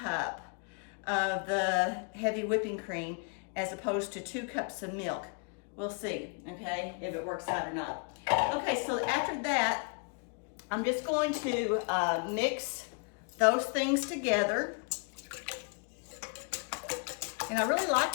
of the heavy whipping cream as opposed to 2 cups of milk. We'll see, okay, if it works out or not. Okay, so after that, I'm just going to mix those things together. And I really like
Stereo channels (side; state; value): right; quieter; 37.3 dB